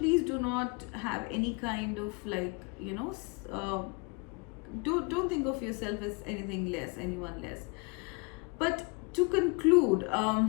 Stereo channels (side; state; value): right; quieter; 30.6 dB